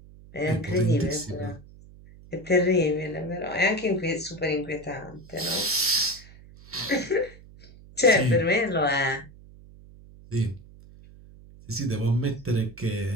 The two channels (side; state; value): right; noise; hum, 21 dB below the sound